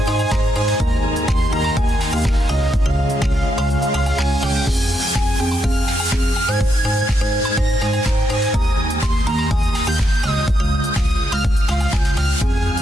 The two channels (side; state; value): both; normal; correlation 0.80